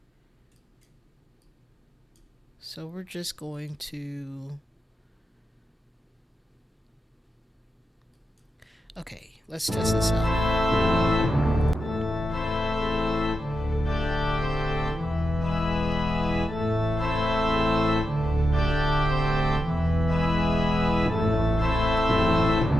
So we're just going to. Okay, let's test this out.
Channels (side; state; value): both; normal; correlation 0.88